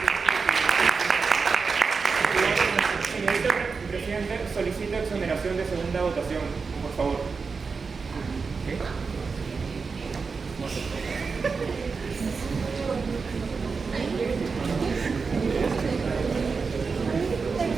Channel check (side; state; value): left; quieter; 4.9 dB